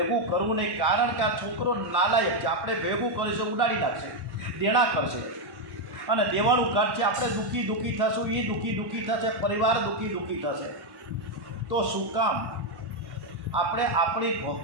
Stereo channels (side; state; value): left; late; 1.1 ms